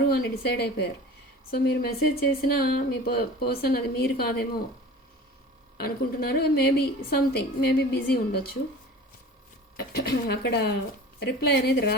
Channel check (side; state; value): both; normal; correlation 0.39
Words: అని డిసైడ్ అయిపోయారు. సో మీరు మెసేజ్ చేసినా మీ పర్సన్ అది మీరు కాదేమో అనుకుంటున్నారు. మేబీ బిజీ ఉండొచ్చు. అక్కడ రిప్లై అనేది